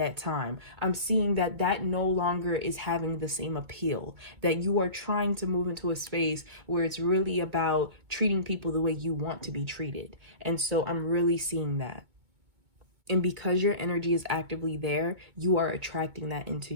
time. I'm seeing that that no longer is having the same appeal, that you are trying to move into a space where it's really about treating people the way you want to be treated. And so I'm really seeing that. And because your energy is actively there, you are attracting that into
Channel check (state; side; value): late; left; 2.2 ms